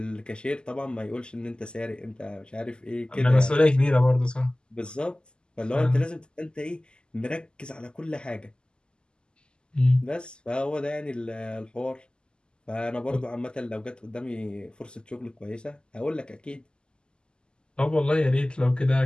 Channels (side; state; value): right; late; 0.048 ms